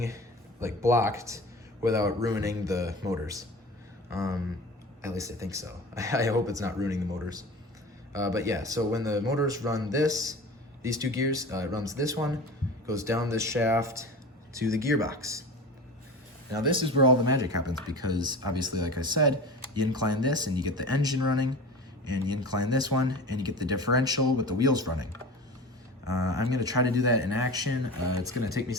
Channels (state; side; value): normal; both; correlation 0.34